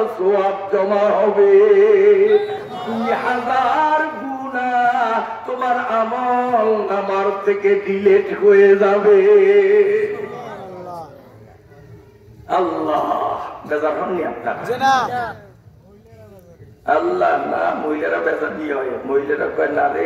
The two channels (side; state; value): both; identical; correlation 1.00